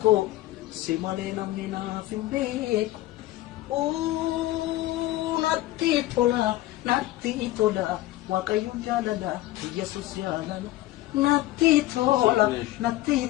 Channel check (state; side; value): quieter; right; 16.4 dB